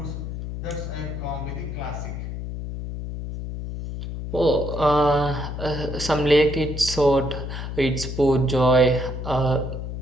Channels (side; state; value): left; noise; hum, 6 dB below the sound